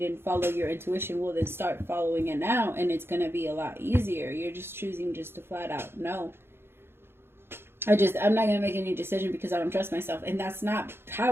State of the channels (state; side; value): late; left; 0.11 ms